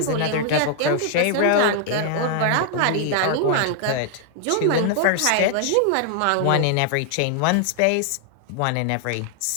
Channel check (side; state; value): both; different; correlation 0.00